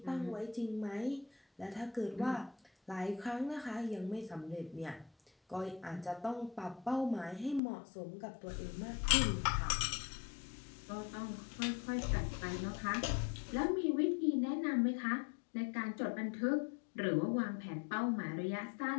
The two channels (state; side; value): drops out; right; at 7.6 s